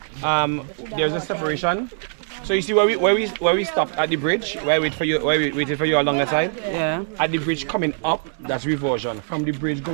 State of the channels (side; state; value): left; silent; 64 dB below the other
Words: there's a separation. So you see where we stopped at the bridge, where we waited for you along the side. Yeah. At the bridge coming up, that's Reversion. From the bridge